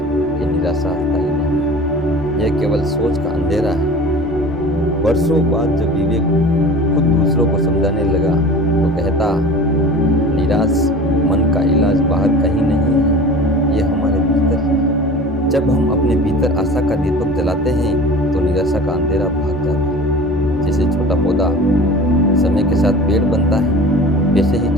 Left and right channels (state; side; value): normal; both; correlation 0.39